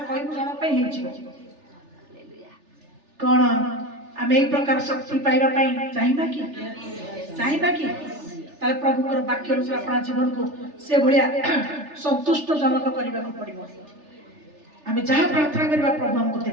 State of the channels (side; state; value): left; late; 3.4 ms